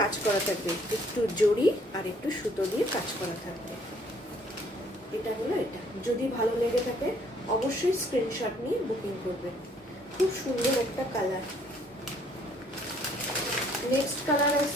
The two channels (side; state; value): both; normal; correlation 0.62